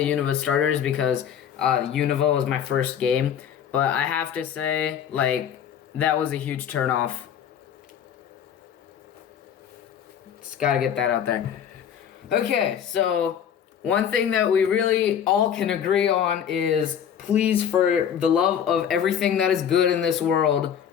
Unova starters because Unova was my first game, but I have to say, that was a huge turnoff. Just gotta get that out there. Okay, so one thing that we really all can agree on is, please, for the love of everything that is good in this world,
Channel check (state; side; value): quieter; right; 8.7 dB